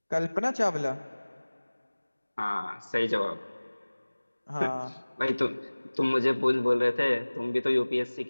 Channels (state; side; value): inverted; both; correlation -1.00